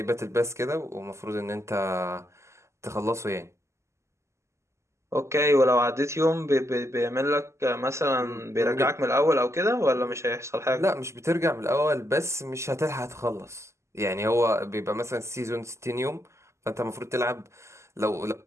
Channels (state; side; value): late; left; 0.13 ms